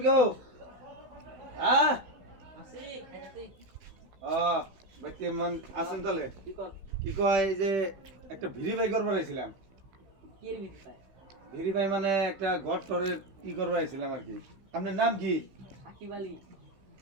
কেউ? হ্যাঁ ও বাড়িতে আছেন তাহলে? কি কয় এই যে একটা ভেরিফাই করবার আইছিলাম। ভেরিফাই মানে একটা ঘর টরের কি করবার আইছিলাম আর কি। আপনার নাম কি? সাকিব আলী।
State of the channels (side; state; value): left; late; 16 ms